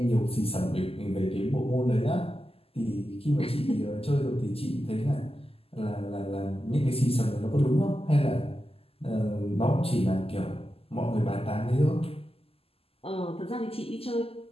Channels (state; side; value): late; right; 0.28 ms